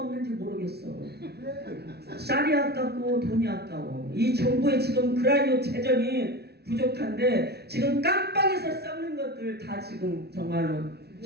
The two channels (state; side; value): late; left; 0.48 ms